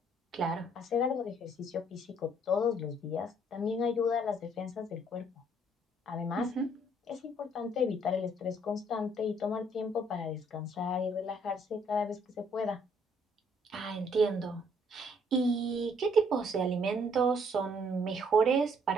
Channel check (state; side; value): normal; both; correlation 0.65